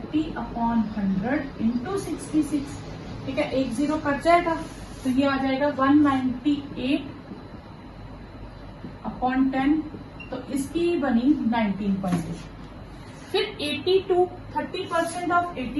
× 66। ठीक है, 1 0 कट जाएगा, तो ये आ जाएगा 198/10, तो इसकी बनी 19.8। फिर 82, 30% ऑफ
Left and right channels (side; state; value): both; identical; correlation 1.00